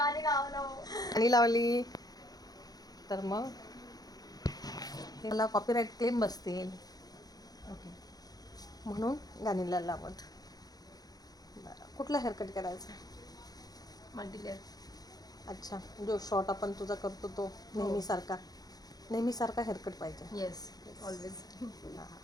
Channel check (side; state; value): right; late; 0.19 ms